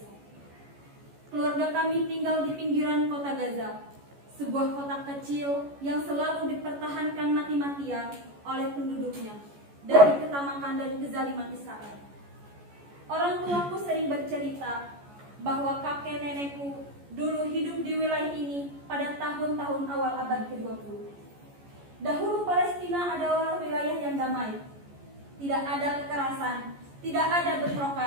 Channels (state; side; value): late; left; 14 ms